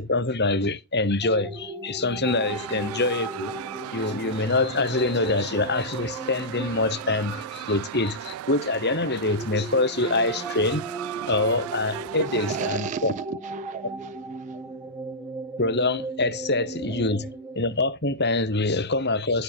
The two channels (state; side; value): normal; both; correlation -0.10